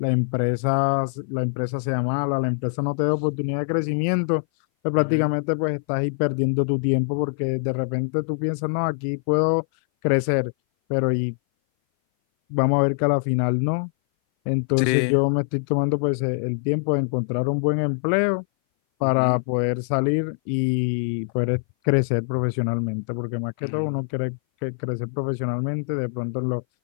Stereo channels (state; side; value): silent; right; 58 dB below the other